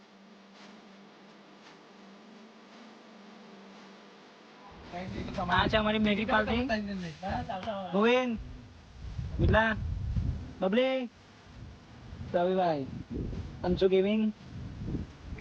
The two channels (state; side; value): identical; both; correlation 1.00